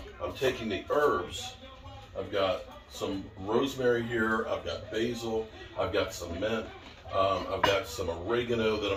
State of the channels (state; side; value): identical; both; correlation 1.00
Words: I'm taking the herbs. I've got some rosemary here, I've got basil, I've got some mint, I've got some oregano that